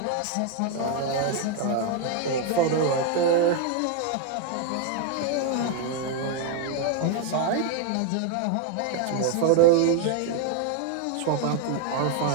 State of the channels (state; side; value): different; both; correlation 0.00